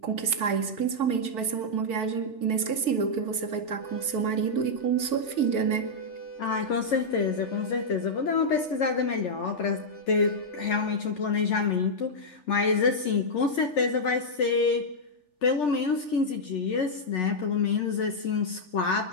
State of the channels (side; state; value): right; late; 3.4 ms